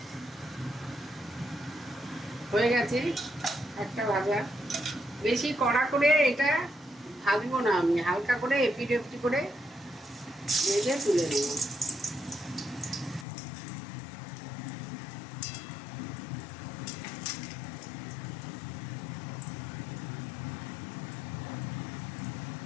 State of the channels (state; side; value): drops out; right; at 13.2 s